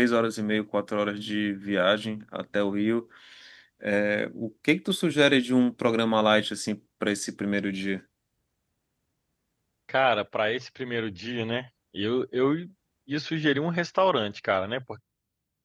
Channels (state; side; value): identical; both; correlation 1.00